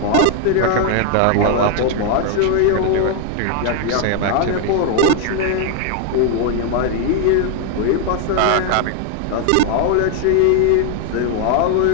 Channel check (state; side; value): different; both; correlation 0.00